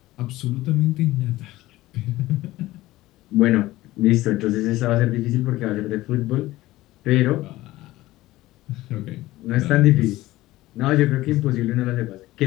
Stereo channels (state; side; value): quieter; right; 17.3 dB